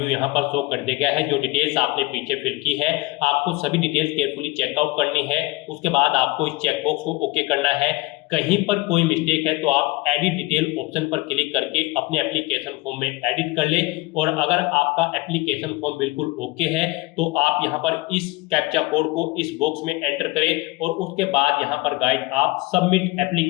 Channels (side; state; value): right; quieter; 22.0 dB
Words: यहाँ पर शो कर दिया गया है। जो डिटेल्स आपने पीछे फिल की है आपको सभी डिटेल्स केयरफुली चेकआउट करनी है। उसके बाद आपको इस चेकबॉक्स को ओके करना है। कहीं पर कोई मिस्टेक है तो आप एडिट डिटेल ऑप्शन पर क्लिक करके अपने एप्लीकेशन फॉर्म में एडिट कर ले। और अगर आपका एप्लीकेशन फॉर्म बिल्कुल ओके है तो आप यहाँ पर इस कैप्चा कोड को इस बॉक्स में एंटर करें और उसके बाद यहाँ पर गाइड आप सबमिट